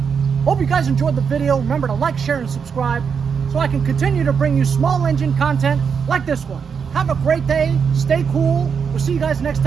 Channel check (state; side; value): quieter; left; 6.4 dB